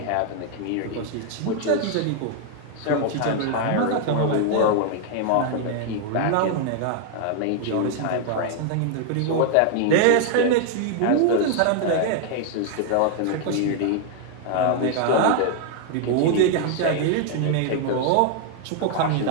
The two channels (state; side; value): different; both; correlation 0.00